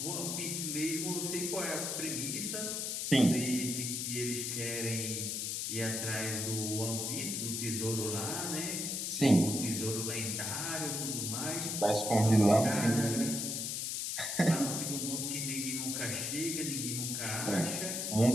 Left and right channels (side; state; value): left; noise; hiss, 2 dB below the sound